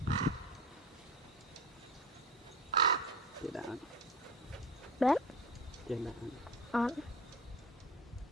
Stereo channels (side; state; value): both; normal; correlation 0.32